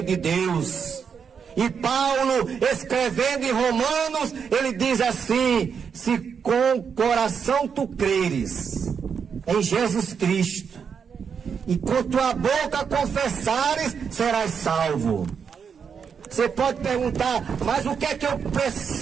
de Deus. E Paulo, escrevendo em Romanos, ele diz assim: se com o coração tu creres em Jesus Cristo, e com tua boca confessares, serás salvo. Você pode perguntar: mas o que é que eu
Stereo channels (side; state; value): left; quieter; 6.7 dB